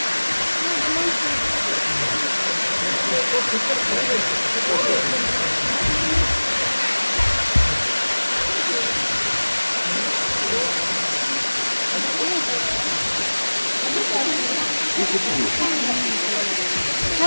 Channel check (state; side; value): inverted; both; correlation -1.00